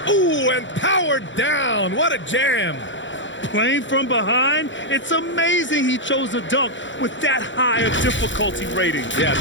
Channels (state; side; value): late; right; 0.54 ms